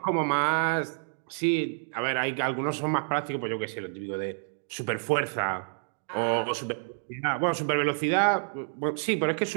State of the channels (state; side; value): silent; left; digital silence